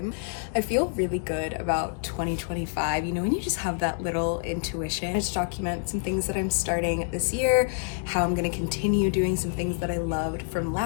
I feel really good about 2025, you know, when you just have that little intuition. I just document some things that I'm starting this year, how I'm going to continue doing some things that I loved from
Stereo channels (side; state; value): right; silent; 60 dB below the other